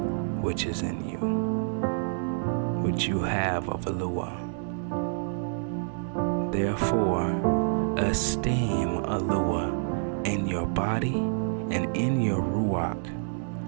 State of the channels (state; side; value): silent; left; digital silence